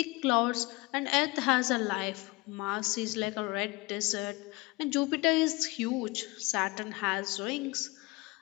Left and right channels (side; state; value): right; quieter; 24.1 dB